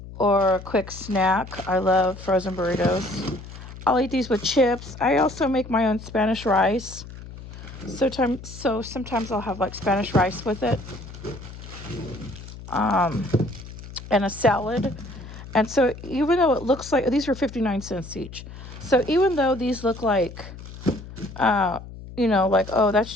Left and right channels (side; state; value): left; noise; hum, 14 dB below the sound